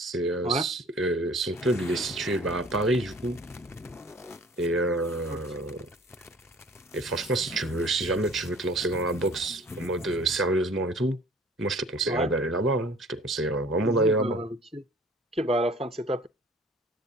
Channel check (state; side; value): normal; both; correlation 0.50